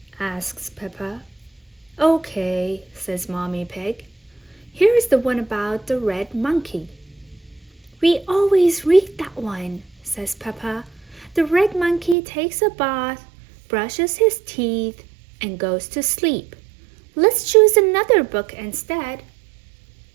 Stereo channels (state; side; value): drops out; left; at 12.2 s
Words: Asks Peppa. Okay, says Mommy Pig. Here's the one about the red monkey. We always read that one, says Peppa. The red monkey takes a bath, brushes his teeth, and goes to sleep. Let's choose another book instead.